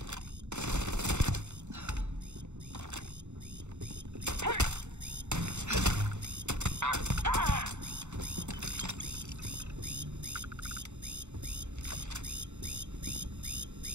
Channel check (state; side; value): late; left; 0.83 ms